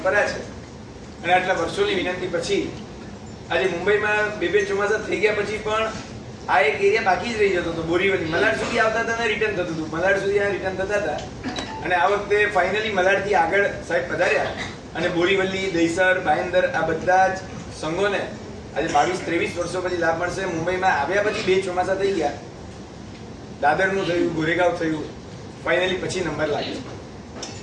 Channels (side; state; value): both; identical; correlation 1.00